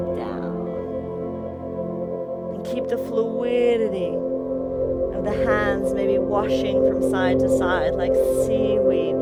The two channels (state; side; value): identical; both; correlation 1.00